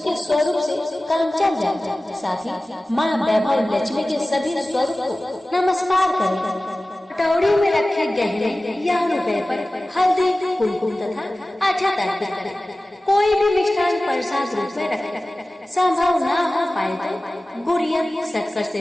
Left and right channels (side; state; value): both; normal; correlation 0.97